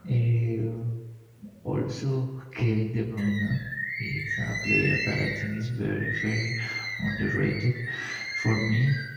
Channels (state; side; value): identical; both; correlation 1.00